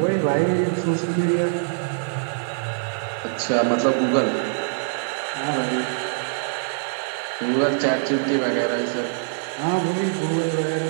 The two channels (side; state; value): left; silent; digital silence